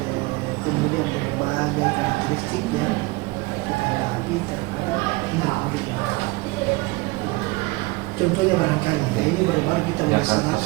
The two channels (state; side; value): quieter; left; 23.9 dB